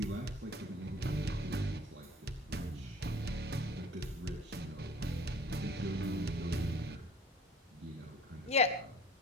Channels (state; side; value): normal; both; correlation 0.48